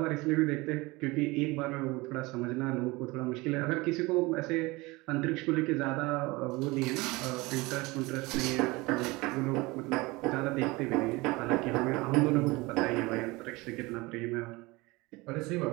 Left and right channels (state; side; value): quieter; left; 22.9 dB